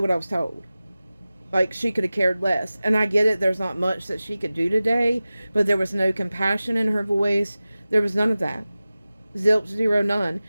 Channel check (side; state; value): both; inverted; correlation -0.96